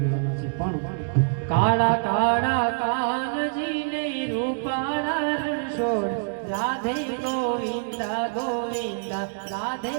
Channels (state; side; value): silent; left; digital silence